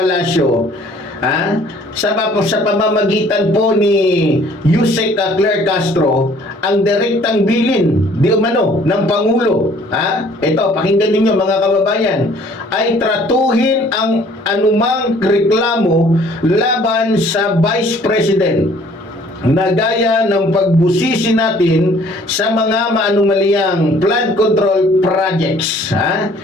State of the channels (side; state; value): both; normal; correlation 0.56